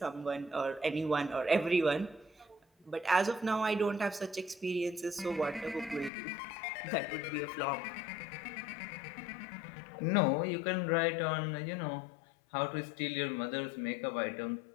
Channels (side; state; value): right; drops out; at 6.1 s